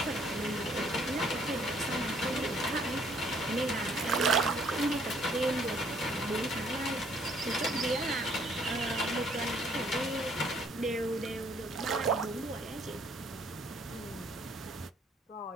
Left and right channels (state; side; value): normal; both; correlation 0.64